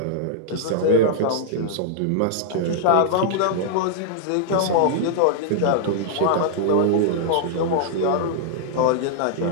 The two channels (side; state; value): both; different; correlation -0.01